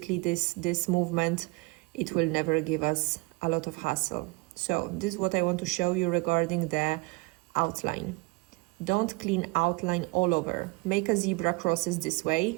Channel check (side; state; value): left; quieter; 25.4 dB